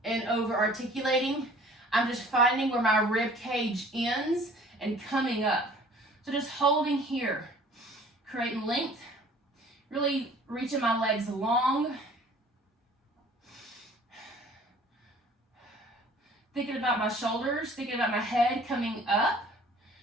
and over articulating. I'm just finding where my rib cage ends and coming up. So just holding here, creating length, really reaching my legs long. Thinking about my shoulders, thinking about my head coming up,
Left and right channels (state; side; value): normal; both; correlation 0.51